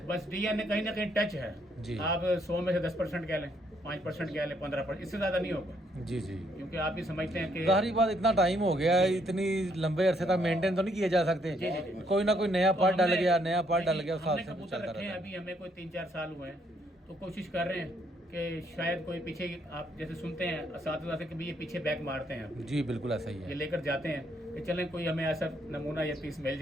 बस डीएनए कहीं ना कहीं टच है जी। आप 100 में से 10% कह लें, 5% कह लें, 15%, इससे ज़्यादा नहीं होगा। जी जी, क्योंकि आप भी समझते हैं कि जाहिर बात इतना टाइम हो गया है, इतनी लंबे अरसे तक मेंटेन तो नहीं किए जा सकते। जी, जी, जी। कोई ना कोई नया तो पार्ट डल हमने- गया, नया पार्ट डल नहीं, गया, हमने साथ से कबूतर चलता रखे हैं, रहता है। अभी हमें कोई 3-4 साल हुए हैं, तो कोशिश कर रहे हैं कि शायद कोई पीछे, आप जैसे सुनते हैं असातिज़ा से कि भाई ये पीछे बैक मारते हैं, जी बिल्कुल ऐसा ही ये है, लेकर जाते हैं कि चलें कोई हमें ऐसा नमूना या पीस मिल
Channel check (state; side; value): normal; both; correlation 0.71